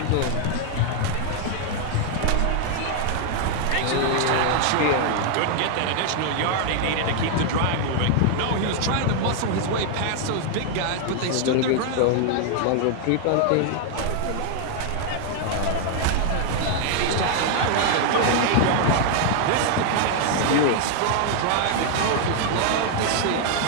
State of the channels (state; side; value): different; both; correlation 0.00